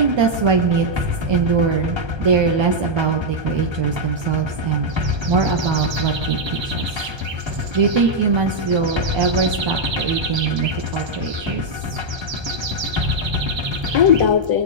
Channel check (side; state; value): left; late; 1.3 ms